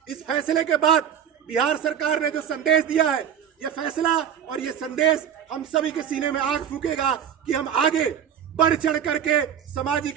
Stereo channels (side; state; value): left; quieter; 8.8 dB